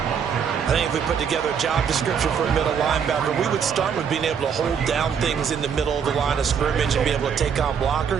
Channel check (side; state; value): left; quieter; 7.2 dB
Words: I think if we put together a job description for a middle linebacker, we would start with being able to hold down things in the middle of the line of scrimmage and be able to take on